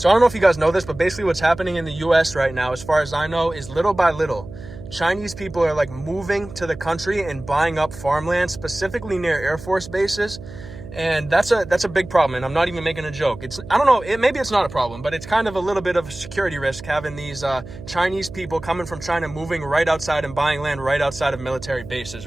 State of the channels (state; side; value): noise; right; hum, 14 dB below the sound